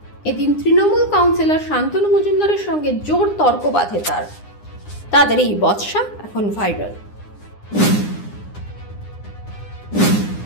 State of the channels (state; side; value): late; right; 9.8 ms